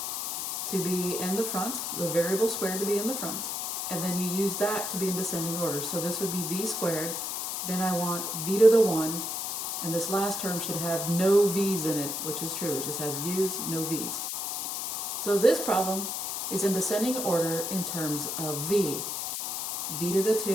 to be in the front, the variable squared to be in the front, and then you use that to be in descending order. So this would be v squared, then I want v to the 1, and this last term should have no v's in it, which is true. It just has u's, no v's. So this problem is in descending order in terms of v. v to the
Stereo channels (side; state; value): left; noise; hiss, 3 dB below the sound